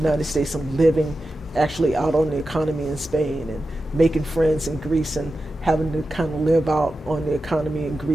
States and living actually out on the economy in Spain and making friends in Greece and having to kind of live out on the economy in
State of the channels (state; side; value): normal; both; correlation 0.92